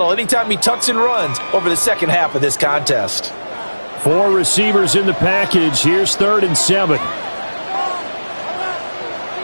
anytime he tucks and runs over the second half of this contest. 4 receivers in the package. Here's 3rd and 7.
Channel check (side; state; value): both; inverted; correlation -1.00